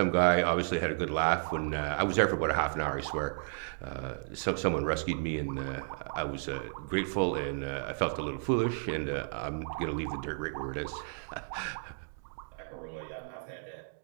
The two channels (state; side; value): silent; left; digital silence